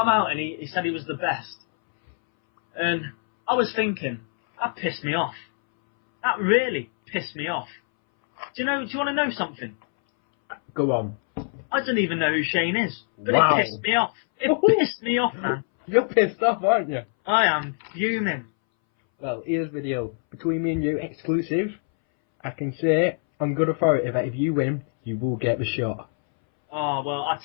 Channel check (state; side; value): silent; right; 61 dB below the other